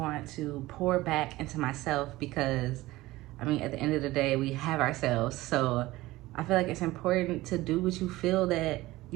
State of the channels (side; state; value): left; quieter; 18.3 dB